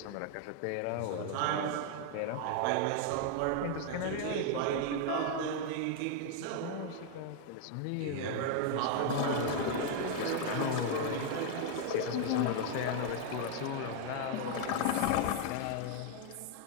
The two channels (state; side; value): different; both; correlation 0.00